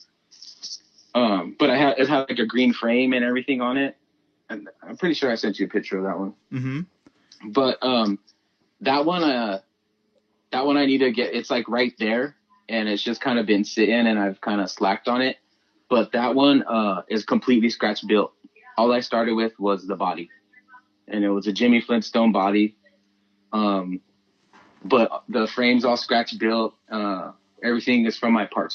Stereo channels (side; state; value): both; identical; correlation 1.00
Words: But it had like a green frame and everything on it, and I'm pretty sure I sent you a picture of that one. Mm-hmm. But that one I need to get. It's like right there, and it's just kind of been sitting, and I've kind of slacked on it. But that one is completely scratch built. All I started with was the body, and it was a Jimmy Flintstone body. But the frame's all scratch built. Everything is from my